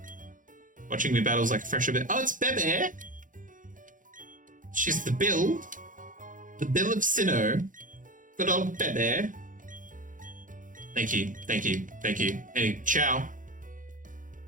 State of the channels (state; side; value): late; left; 0.38 ms